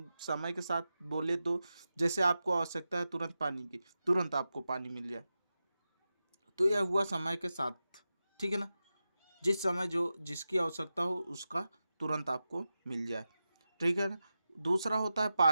समय के साथ बोले तो जैसे आपको आवश्यकता है तुरंत पानी की, तुरंत आपको पानी मिल जाए, तो यह हुआ समय के साथ। ठीक है ना? जिस समय जो जिसकी आवश्यकता हो उसका तुरंत आपको मिल जाए। ठीक है ना? दूसरा होता है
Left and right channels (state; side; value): inverted; both; correlation -0.92